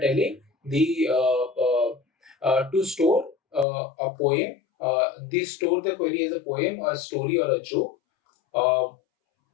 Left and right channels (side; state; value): right; drops out; at 3.7 s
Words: the to store a poem. This store the query as a poem, a story, or a joke, uh,